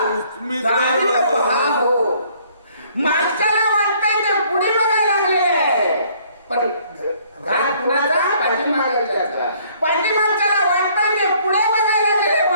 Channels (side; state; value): both; inverted; correlation -0.61